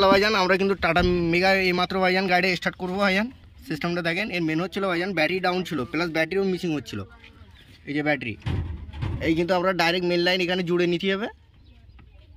ভাইজান আমরা কিন্তু টাটা মেগা এই মাত্র ভাইজান গাড়ি স্টার্ট করবো ভাইজান। সিস্টেমটা দেখেন, এর মেন হচ্ছিলো ভাইজান ব্যাটারি ডাউন ছিল, প্লাস ব্যাটারিও মিসিং হচ্ছিল। এই যে ব্যাটারি এই কিন্তু আমরা ডাইরেক্ট মেন লাইন এখানে জুড়ে নিতে হবে।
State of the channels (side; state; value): both; identical; correlation 1.00